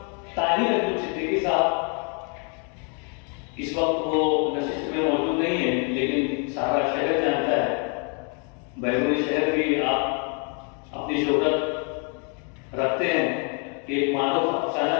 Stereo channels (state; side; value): quieter; right; 38.5 dB